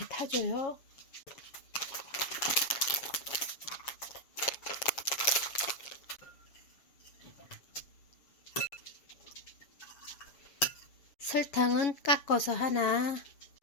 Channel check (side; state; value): right; late; 6.8 ms